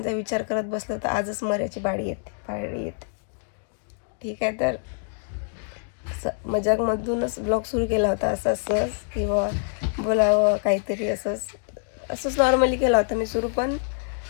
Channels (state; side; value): silent; right; digital silence